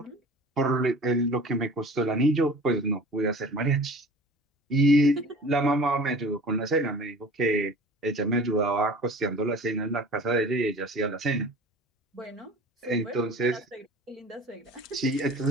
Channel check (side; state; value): both; normal; correlation 0.42